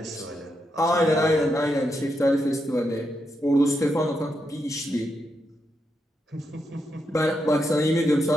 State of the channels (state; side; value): normal; both; correlation 0.83